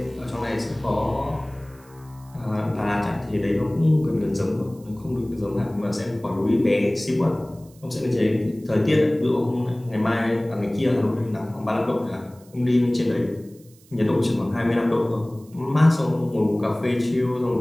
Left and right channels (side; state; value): right; noise; hiss, 28 dB below the sound